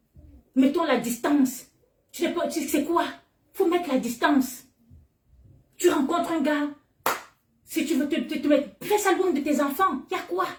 Mettons la distance. Tu sais quoi? Il faut mettre la distance. Tu rencontres un gars, si tu veux te mettre, fais ça loin de tes enfants. Il y a quoi?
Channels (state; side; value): identical; both; correlation 1.00